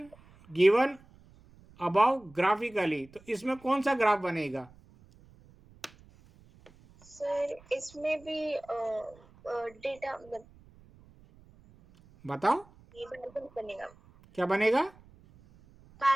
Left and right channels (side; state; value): right; noise; rumble, 26 dB below the sound